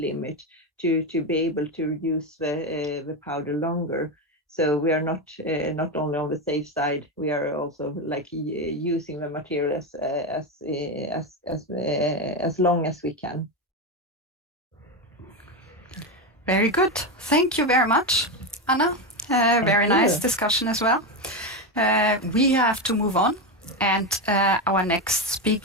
to be able to use the powder longer. So we are not only on the safe side, we are also like using the material as long as we can. Very good. Thank you very much, Anna. Very nice discussion as well. We have to move on, and our next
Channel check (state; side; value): normal; both; correlation 0.12